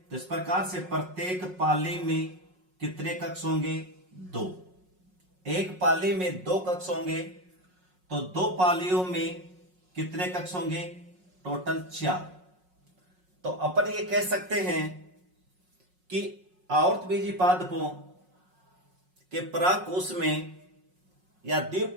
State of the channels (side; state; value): left; late; 5.5 ms